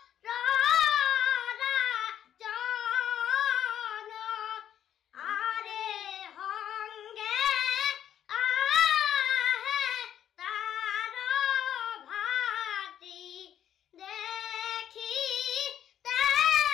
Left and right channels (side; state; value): right; quieter; 10.2 dB